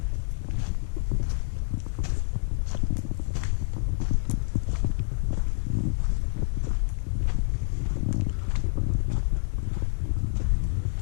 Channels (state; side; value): silent; right; 60 dB below the other